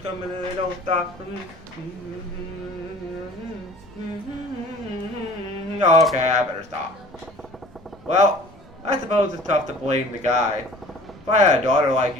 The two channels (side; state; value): both; normal; correlation 0.47